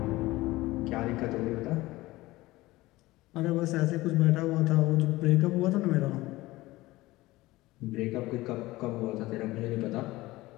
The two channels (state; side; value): quieter; right; 18.9 dB